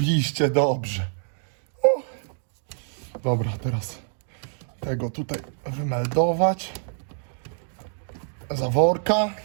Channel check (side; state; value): left; silent; digital silence